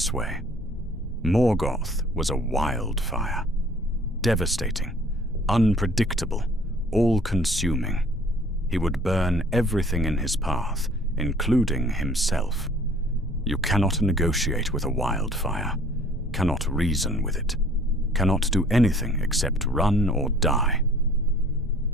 way. Morgoth was a wildfire. Devastating, unpredictable, all-consuming. He would burn everything in his path, including himself. You cannot negotiate with a wildfire, cannot reason with it, cannot do anything except run or die.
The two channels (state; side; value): normal; both; correlation 0.54